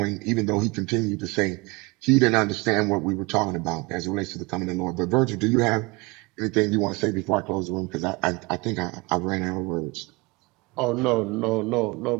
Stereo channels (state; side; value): quieter; left; 25.8 dB